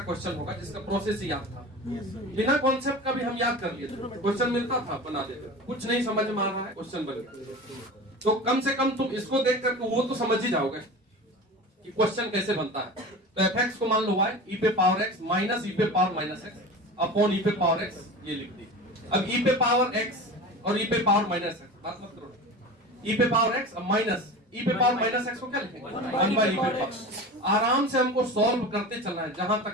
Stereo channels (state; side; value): normal; both; correlation 0.32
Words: क्वेश्चन होगा जिसका प्रोसेस ही याद था, बिना कॉन्सेप्ट का भी हम याद कर लिए थे, क्वेश्चन मिलता था बना देते, कुछ नहीं समझ में आ रहा है क्वेश्चन बन गया। तो कम से कम तुम इसको देख करके वो तो समझ ही जाओगे कि क्वेश्चन कैसे बनता है। तो f(x) को मान लो y e⁻x minus e⁻−x upon e⁻x, ये लिख दी। अब e⁻x और e⁻−x बात मत करो, e⁻x माइनस e⁻−x को क्या लिखेंगे, 1/e⁻। आराम से हमको सॉल्व करते चलना है, जहां